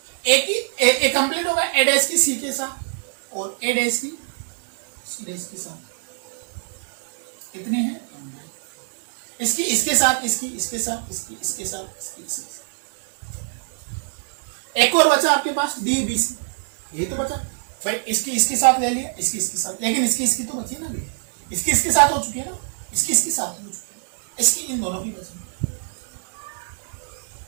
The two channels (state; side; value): silent; left; digital silence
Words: ए कंप्लीट होगा ए डैश की सी के साथ और ए डैश की सी डैश के साथ। कितने हैं, इसकी इसके साथ, इसकी इसके साथ, इसकी इसके साथ, इसकी इसके साथ। एक और बचा आपके पास डी बी सी, ये तो बचा भाई, इसकी इसके साथ ले लिया, इसकी इसके साथ, लेकिन इसकी इसकी तो बची ना भी, इसकी इसके साथ हो चुकी है ना, इसकी इसके साथ हो चुकी है, इसकी इन दोनों की बची।